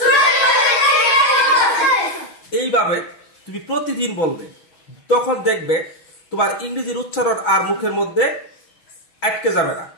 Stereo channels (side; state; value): right; late; 6.3 ms